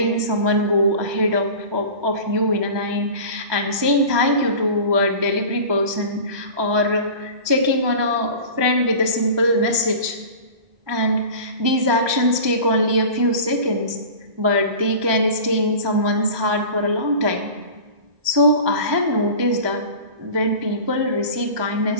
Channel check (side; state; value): left; late; 1.2 ms